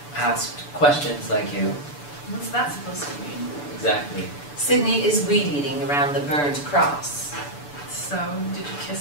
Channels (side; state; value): right; late; 6.9 ms